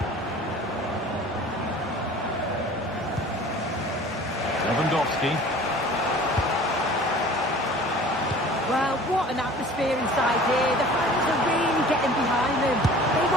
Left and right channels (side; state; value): both; normal; correlation 0.45